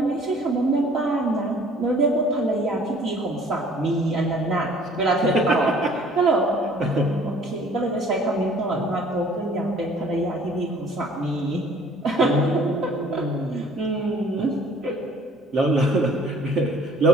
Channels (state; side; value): normal; both; correlation 0.54